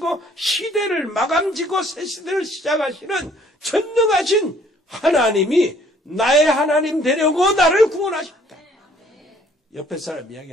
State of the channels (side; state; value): both; normal; correlation 0.60